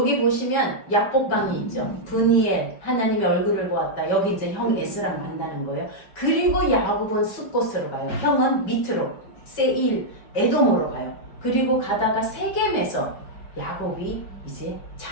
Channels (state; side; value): late; right; 5.1 ms